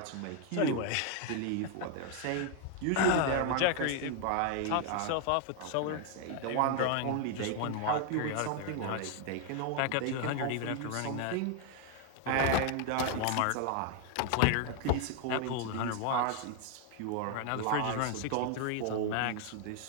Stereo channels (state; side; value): different; both; correlation 0.00